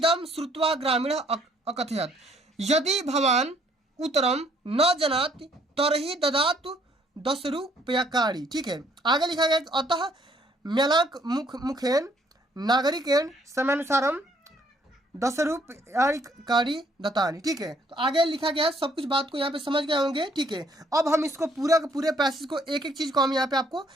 श्रुत्वा ग्रामीण अकथयत् यदि भवान उत्तरम न जानाति तर्हि ददातु 10 रूप्यकाणि। ठीक है, आगे लिखा गया अतः म्यालाक मुखेन नागरिकेन समयानुसारम 10 रूप्यकाणि दत्तानि। ठीक है, तो आगे लिखा गया है, सब कुछ बात को यहाँ पे समझ गए होंगे। ठीक है, अब हम इसको पूरा के पूरे पैसेज को एक एक चीज को हम यहाँ पे आपको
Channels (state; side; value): normal; both; correlation 0.65